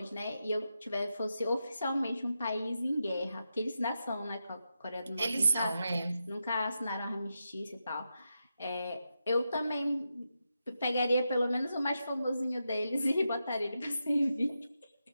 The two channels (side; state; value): both; inverted; correlation -0.87